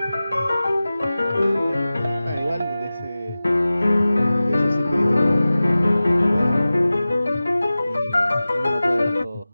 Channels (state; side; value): inverted; both; correlation -0.96